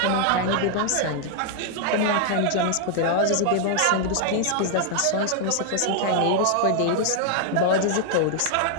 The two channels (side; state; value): both; different; correlation 0.00